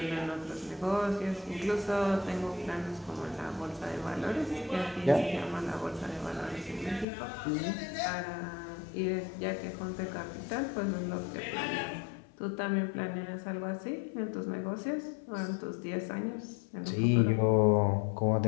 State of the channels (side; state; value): right; drops out; at 7.1 s